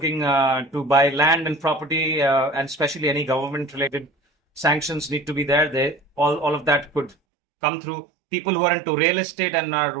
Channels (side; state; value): left; drops out; at 7.2 s